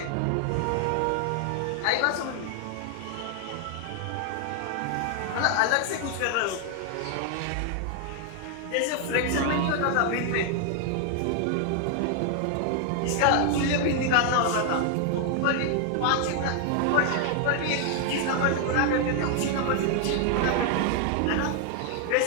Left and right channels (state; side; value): different; both; correlation 0.00